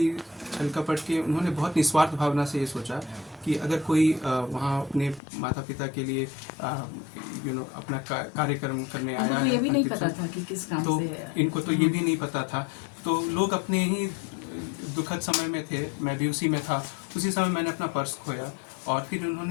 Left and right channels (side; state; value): right; drops out; at 5.2 s